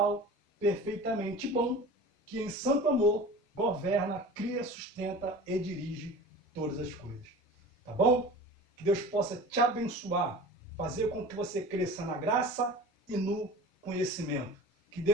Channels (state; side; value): normal; both; correlation 0.38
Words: perfeitamente bom, que em santo amor governa, cria, sustenta e dirige todas as coisas. Tá bom? Que Deus possa te abençoar, fazer com que você cresça na graça e no conhecimento. Que